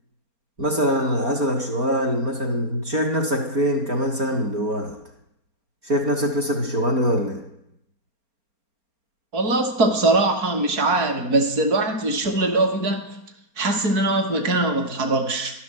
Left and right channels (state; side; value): late; left; 4.3 ms